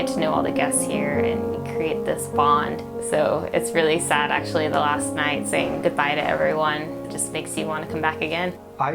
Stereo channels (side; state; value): both; identical; correlation 1.00